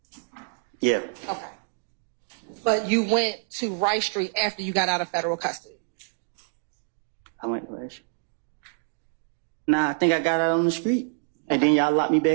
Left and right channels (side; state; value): left; silent; digital silence